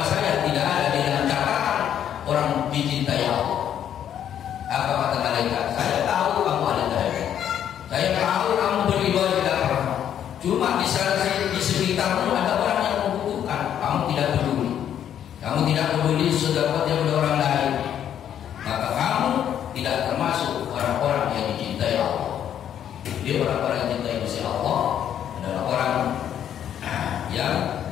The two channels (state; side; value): quieter; right; 9.8 dB